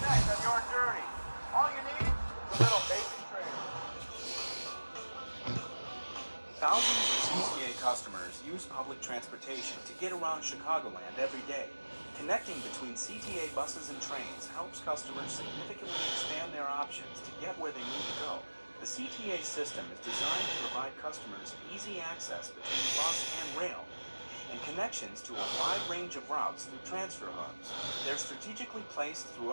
on your journey. All you need is a little basic training. Thousands of CTA customers use public transportation to get around Chicagoland every day. Connecting between CTA buses and trains helps customers significantly expand their options to get where they need to go. The CTA system is designed to provide customers easy access between bus and rail, and connections to a wide range of routes through transfer hubs. They're strategically placed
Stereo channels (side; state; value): both; inverted; correlation -1.00